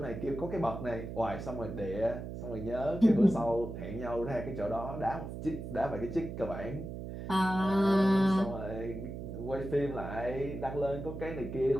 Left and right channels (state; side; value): noise; right; hum, 8 dB below the sound